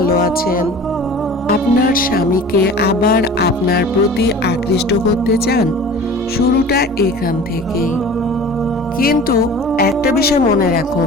আছেন। আপনার স্বামীকে আবার আপনার প্রতি আকৃষ্ট করতে চান, শুরুটা এখান থেকেই। কিন্তু একটা বিষয় মনে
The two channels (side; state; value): both; normal; correlation 0.41